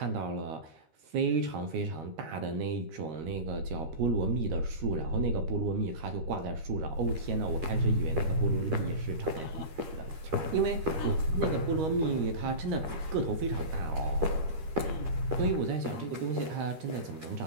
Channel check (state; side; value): late; left; 13 ms